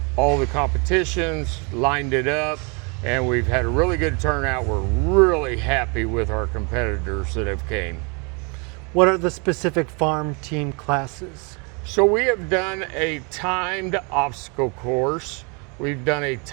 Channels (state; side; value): quieter; left; 32.8 dB